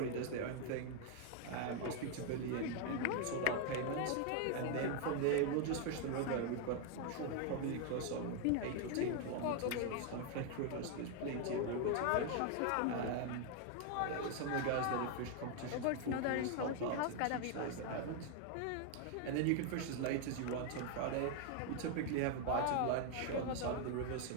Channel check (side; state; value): both; different; correlation 0.00